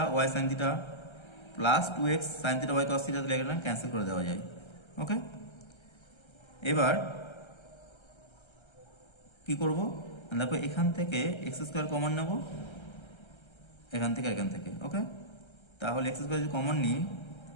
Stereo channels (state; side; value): late; right; 1.3 ms